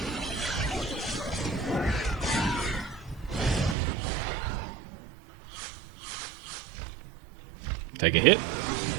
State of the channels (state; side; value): drops out; left; at 3.8 s